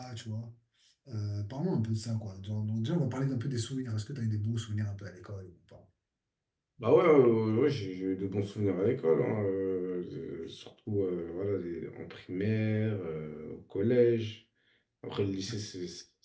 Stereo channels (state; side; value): identical; both; correlation 1.00